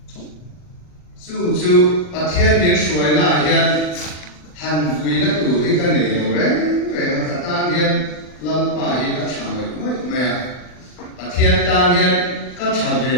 chu pathian ni suai na hian han vui na tu hi ka nei lo re về các tan hiền lâm pa hi các chàng người mới mẹ thiên tan hiền các thà về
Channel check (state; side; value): late; right; 39 ms